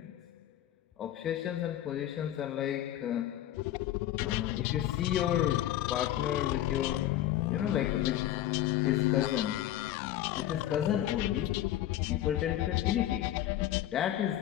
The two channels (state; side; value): quieter; right; 13.0 dB